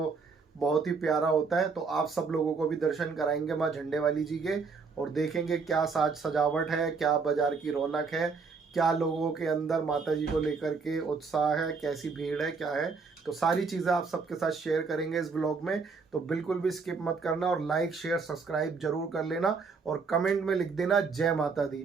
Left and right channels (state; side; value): quieter; left; 4.8 dB